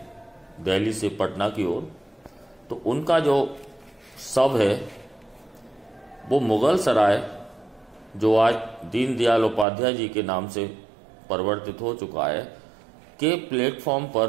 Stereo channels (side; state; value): left; drops out; at 9.7 s